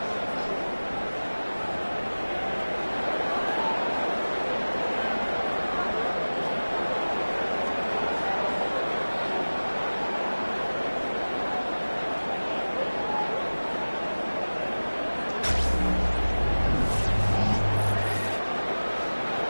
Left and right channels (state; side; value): inverted; both; correlation -1.00